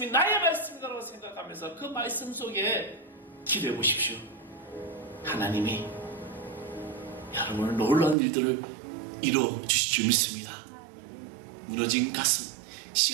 나의 말씀이라고 생각하면서 그 말씀 속에 기도해 보십시오. 하나님이 여러분을 놀라운 일들을 이루어 주실 줄 믿습니다. 무너진 가슴,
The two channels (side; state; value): left; drops out; at 8.2 s